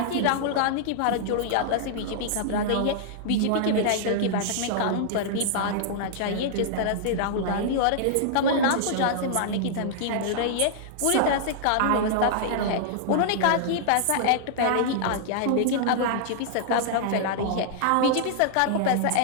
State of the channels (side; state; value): both; different; correlation -0.01